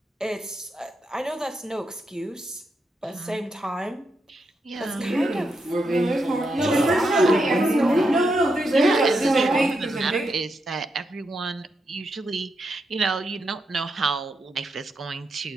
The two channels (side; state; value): both; normal; correlation 0.83